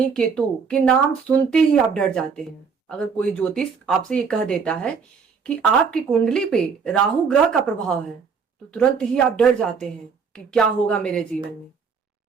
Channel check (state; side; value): quieter; left; 5.8 dB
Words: केतु के नाम सुनते ही आप डर जाते हैं। अगर कोई ज्योतिष आपसे ये कह देता है कि आपकी कुंडली पे राहु ग्रह का प्रभाव है तो तुरंत ही आप डर जाते हैं कि क्या होगा मेरे जीवन में।